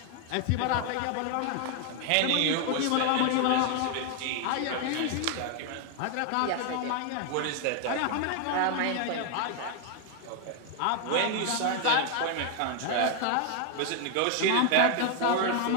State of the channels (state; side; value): different; both; correlation 0.01